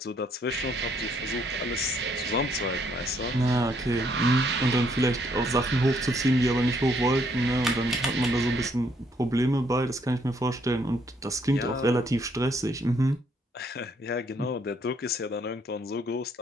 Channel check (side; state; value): both; normal; correlation 0.69